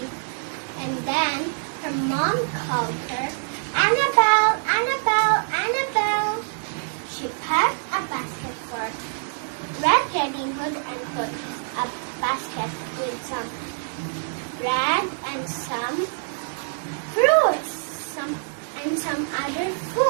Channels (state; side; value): silent; left; digital silence